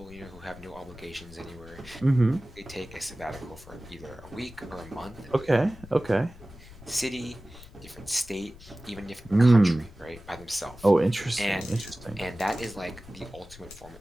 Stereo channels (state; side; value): noise; left; rumble, 19 dB below the sound